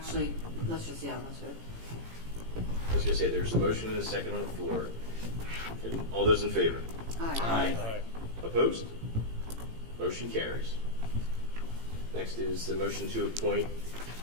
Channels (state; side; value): late; left; 18 ms